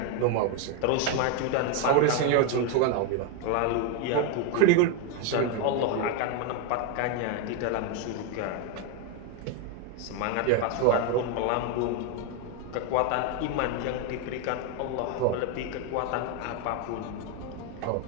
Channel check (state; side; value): different; both; correlation 0.01